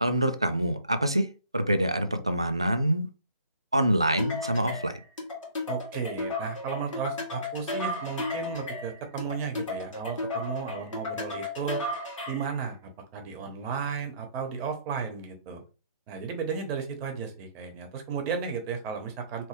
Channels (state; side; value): inverted; both; correlation -0.58